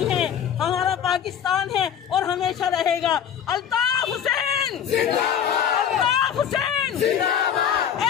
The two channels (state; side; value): quieter; right; 8.7 dB